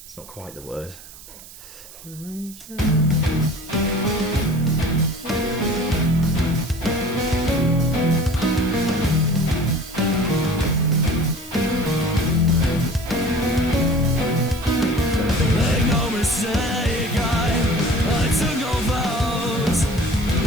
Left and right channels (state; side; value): noise; right; hiss, 18 dB below the sound